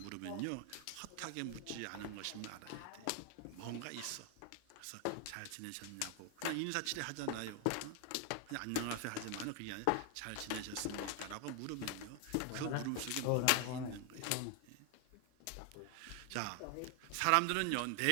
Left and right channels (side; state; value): both; different; correlation 0.00